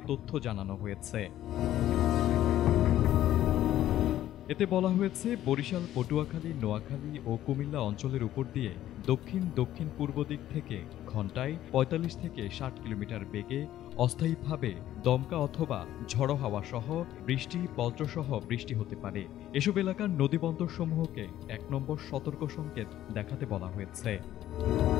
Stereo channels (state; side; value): quieter; right; 12.9 dB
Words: তথ্য জানানো হয়েছে। এতে বলা হয়েছে, বরিশাল, পটুয়াখালী, নোয়াখালী ও কুমিল্লা অঞ্চলের উপর দিয়ে দক্ষিণ পূর্ব দিক থেকে ঘন্টায় ৪৫ থেকে ৬০ কিলোমিটার বেগে অস্থায়ীভাবে দমকা অথবা ঝড়ো হাওয়া সহ বৃষ্টি, বজ্রসহ বৃষ্টি হতে পারে। এসব এলাকার নদীবন্দরসমূহকে ১ নম্বর সতর্ক সংকেত দেখাতে বলা হয়েছে।